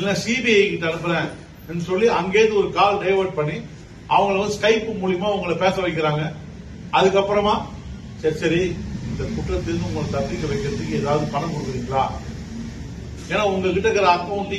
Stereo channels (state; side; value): identical; both; correlation 1.00